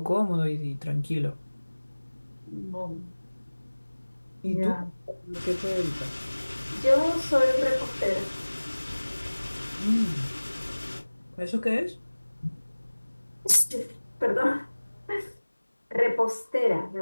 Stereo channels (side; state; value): both; inverted; correlation -1.00